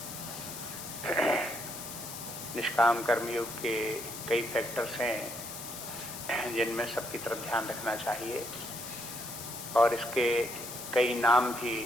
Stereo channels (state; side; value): noise; left; hiss, 9 dB below the sound